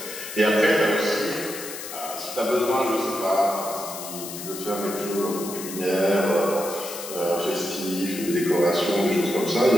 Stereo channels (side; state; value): left; noise; hiss, 10 dB below the sound